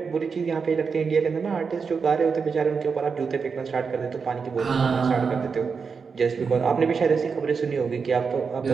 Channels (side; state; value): left; quieter; 5.5 dB